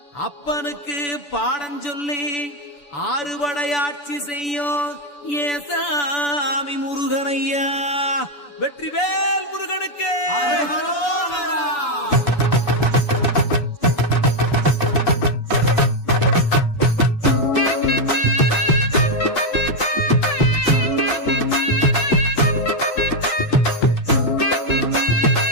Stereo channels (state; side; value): late; right; 6.9 ms